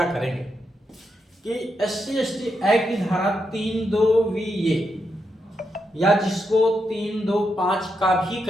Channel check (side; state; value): both; normal; correlation 0.83